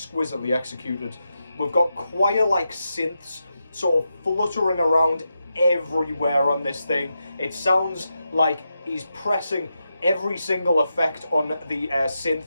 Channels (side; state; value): both; inverted; correlation -0.87